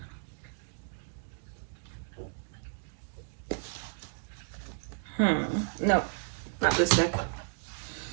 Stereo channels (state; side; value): silent; left; 56 dB below the other